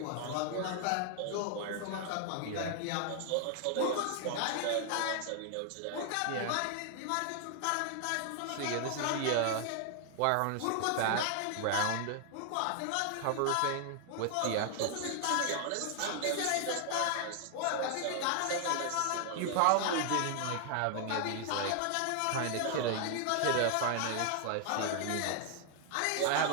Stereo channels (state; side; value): different; both; correlation 0.00